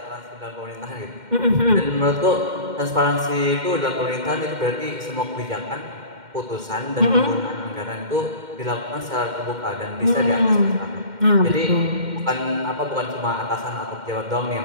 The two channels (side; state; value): left; late; 2.1 ms